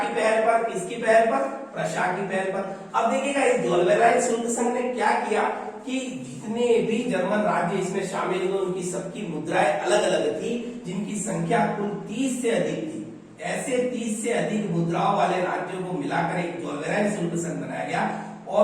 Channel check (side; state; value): both; identical; correlation 1.00